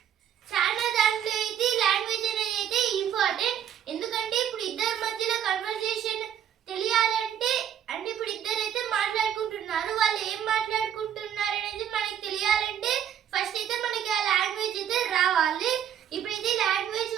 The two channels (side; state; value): left; quieter; 9.6 dB